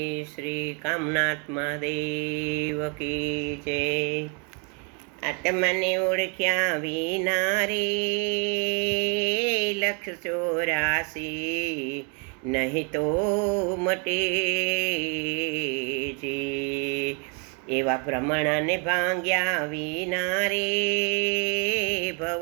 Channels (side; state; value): left; quieter; 36.4 dB